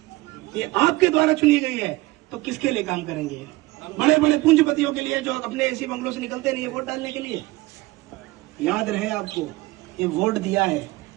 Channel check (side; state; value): left; quieter; 20.1 dB